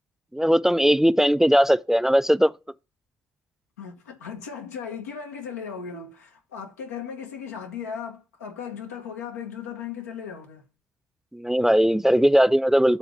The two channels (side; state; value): both; normal; correlation 0.97